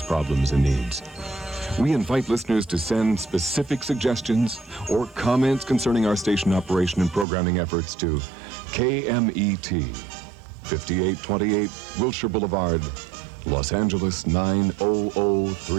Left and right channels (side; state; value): left; drops out; at 7.2 s